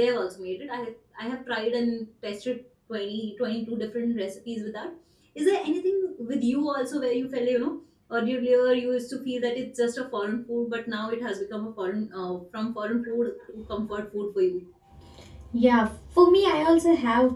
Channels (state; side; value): identical; both; correlation 1.00